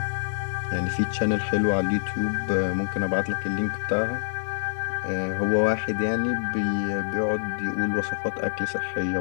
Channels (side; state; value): right; silent; 61 dB below the other